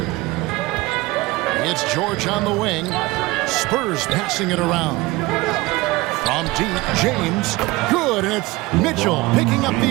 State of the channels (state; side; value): quieter; left; 21.1 dB